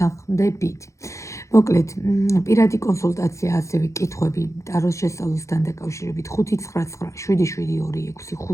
მოკლედ, პირადი კონსულტაცია, ასევე კითხვები ტაროს შესწავლასთან დაკავშირებით 5997726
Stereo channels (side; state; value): right; late; 0.15 ms